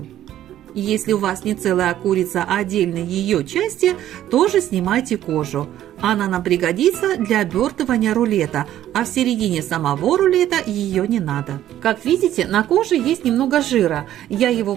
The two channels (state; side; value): quieter; left; 12.3 dB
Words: Если у вас не целая курица, а отдельные ее части, тоже снимайте кожу. Она нам пригодится для обертывания рулета, а в середине самого рулета ее не надо. Как видите, на коже есть немного жира, я его